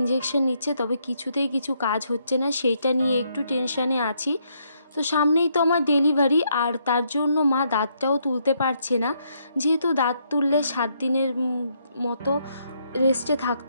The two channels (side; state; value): both; inverted; correlation -0.74